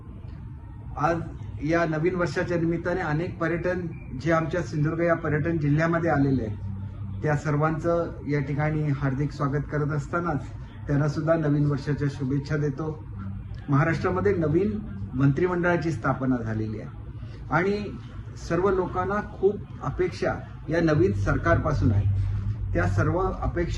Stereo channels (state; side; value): identical; both; correlation 1.00